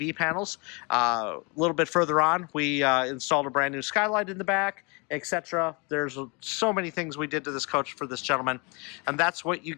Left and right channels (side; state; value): right; quieter; 30.4 dB